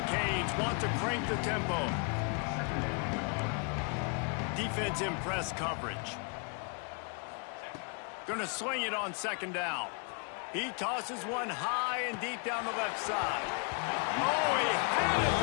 Canes want to crank the tempo. Defense in press coverage. Going to swing it on second down. He tosses one high and deep down the left side. Oh, he had it.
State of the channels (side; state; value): right; quieter; 37.9 dB